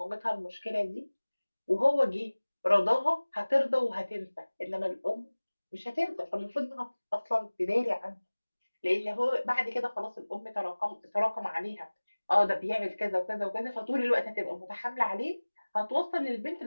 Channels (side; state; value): both; inverted; correlation -1.00